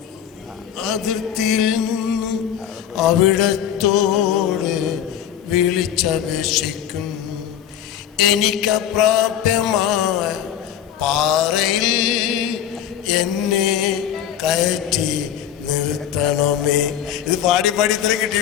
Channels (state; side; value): quieter; right; 9.8 dB